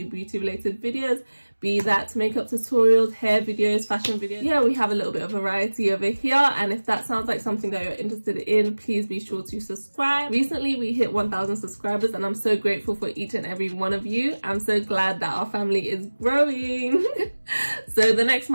beauty related videos, be that makeup tutorials, hair videos, fashion videos. Yeah, we have a little bit of variety over here, and if that sounds like something that you're interested in, please be sure to subscribe. Recently we hit 1,000 subscribers and I'm so grateful for each and every one of you. I'm so glad that our family is growing. So the next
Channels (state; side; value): inverted; both; correlation -1.00